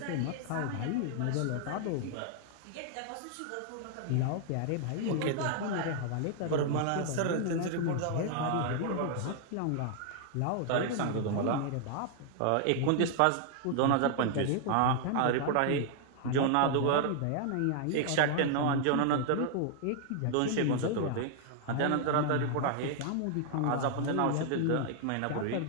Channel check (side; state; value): both; different; correlation 0.00